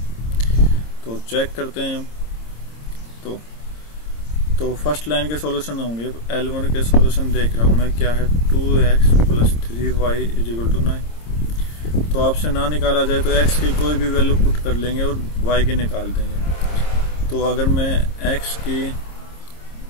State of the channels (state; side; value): late; right; 26 ms